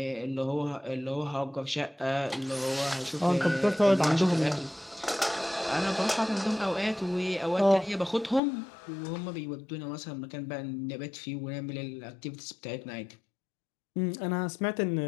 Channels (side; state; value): right; drops out; at 8.4 s